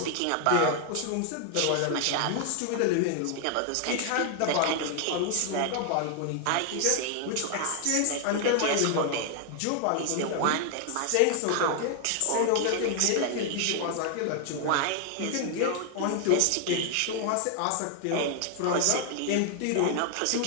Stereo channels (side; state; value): both; different; correlation 0.00